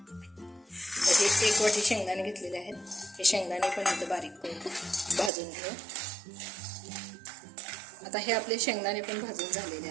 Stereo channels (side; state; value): left; drops out; at 5.3 s